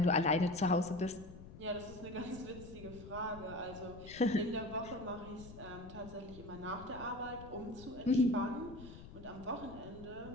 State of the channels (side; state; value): left; noise; rumble, 15 dB below the sound